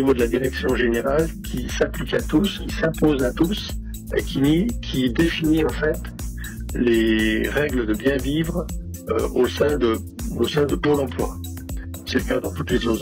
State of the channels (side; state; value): both; identical; correlation 1.00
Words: de la direction générale qui s'applique à tous, qui s'impose à tous, et qui définit en fait les règles de bien vivre au sein de Pôle emploi. C'est le cas dans toutes les